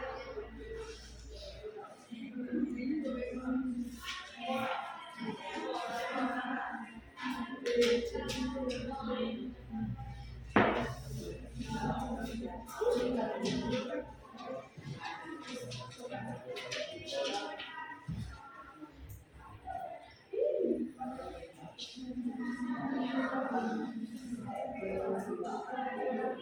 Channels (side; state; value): both; identical; correlation 1.00